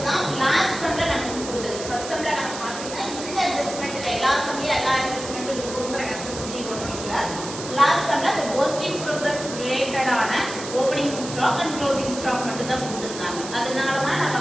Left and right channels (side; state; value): right; noise; hiss, 10 dB below the sound